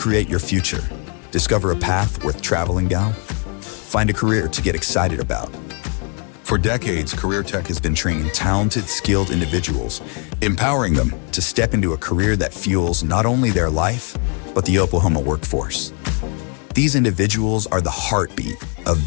your future, discover a path worth traveling down, find a career to get excited about. For decades, Career Tech has been training talented, skilled individuals, empowering them to step into a career that fuels not only their life, but the Oklahoma workforce. These individuals are the heartbeat of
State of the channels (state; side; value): quieter; right; 38.0 dB